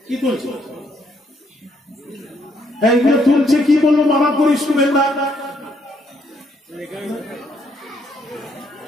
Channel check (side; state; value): both; normal; correlation 0.72